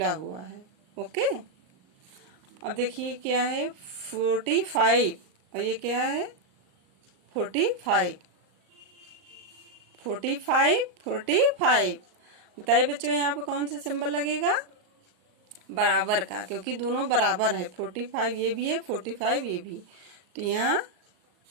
हुआ है। ओके, अब देखिए क्या है 45 और ये क्या है 45, 45 45। बताइए बच्चों यहाँ पे कौन सा सिंबल लगेगा, बराबर का, क्योंकि दोनों बराबर है। 45 ये भी है, 45 ये भी, तो यहाँ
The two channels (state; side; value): late; left; 38 ms